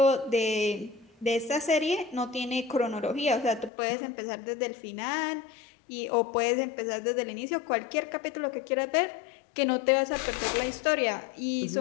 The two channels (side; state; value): right; drops out; at 3.7 s